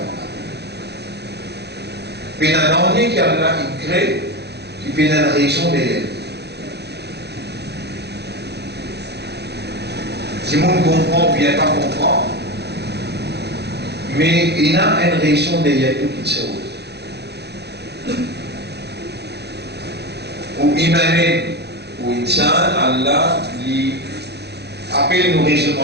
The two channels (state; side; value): late; left; 0.48 ms